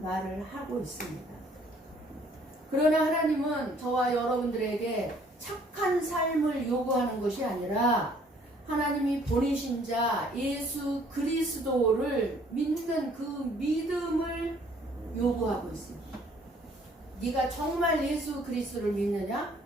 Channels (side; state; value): both; normal; correlation 0.60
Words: 하고 있습니다. 그러나 하나님은 저와 여러분들에게 착한 삶을 요구하는 것이 아니라 하나님이 보내신 자 예수 그리스도를 믿는 그 믿음을 요구하고 있습니다. 네가 정말 예수 그리스도를 믿느냐?